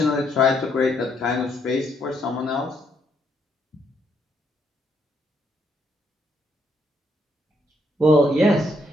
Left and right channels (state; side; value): normal; both; correlation 0.73